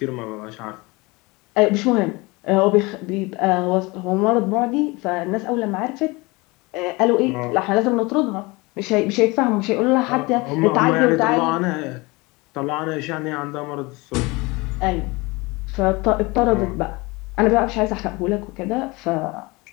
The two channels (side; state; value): right; quieter; 24.4 dB